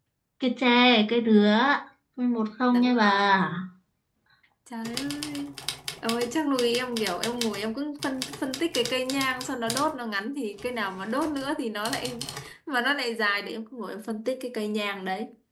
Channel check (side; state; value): both; identical; correlation 1.00